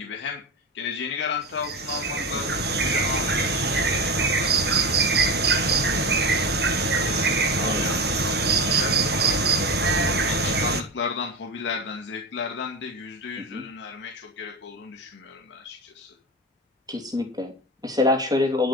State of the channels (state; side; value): normal; both; correlation 0.23